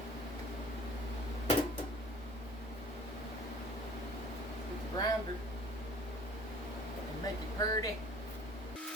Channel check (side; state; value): both; normal; correlation 0.49